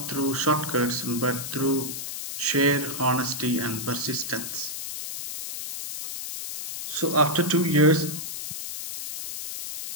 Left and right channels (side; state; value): left; noise; hiss, 7 dB below the sound